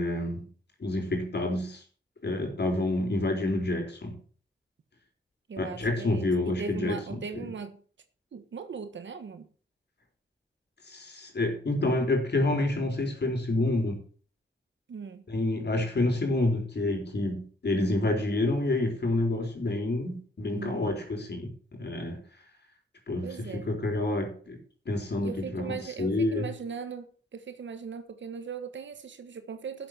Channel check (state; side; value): normal; both; correlation 0.63